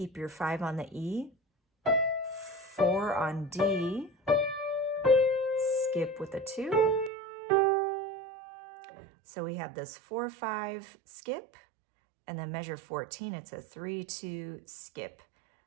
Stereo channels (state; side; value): drops out; left; at 7.1 s